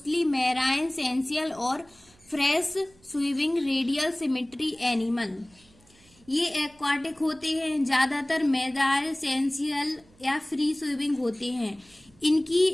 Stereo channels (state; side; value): noise; right; hum, 29 dB below the sound